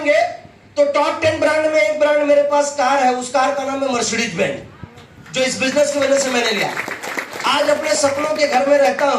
तो टॉप 10 ब्रांड में एक ब्रांड मेरे पास कार है, उस कार का नाम है मर्सिडीज बेंज, जो इस बिजनेस की वजह से मैंने लिया। आज अपने सपनों के घर में रहता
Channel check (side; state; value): both; identical; correlation 1.00